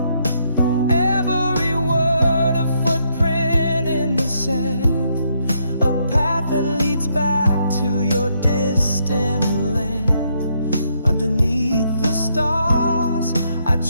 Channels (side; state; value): both; inverted; correlation -0.75